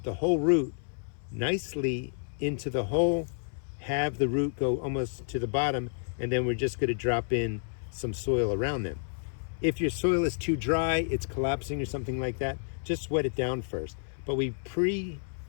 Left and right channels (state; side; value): silent; right; 58 dB below the other